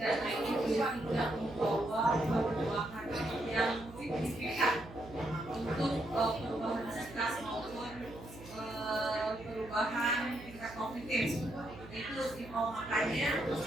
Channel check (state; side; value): noise; right; hum, 16 dB below the sound